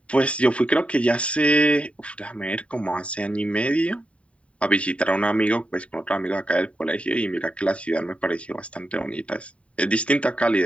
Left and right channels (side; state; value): right; late; 0.063 ms